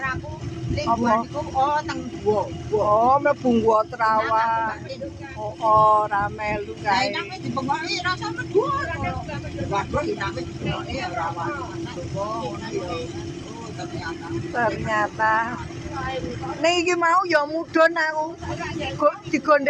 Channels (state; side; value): identical; both; correlation 1.00